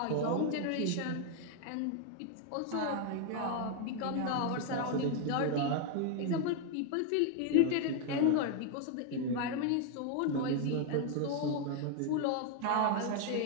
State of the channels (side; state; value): both; different; correlation 0.01